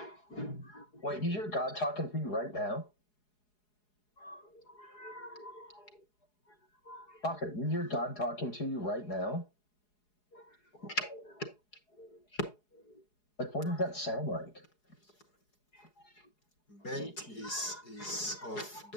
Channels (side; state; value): right; late; 4.8 ms